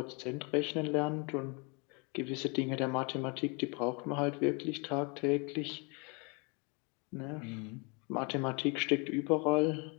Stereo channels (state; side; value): quieter; right; 31.7 dB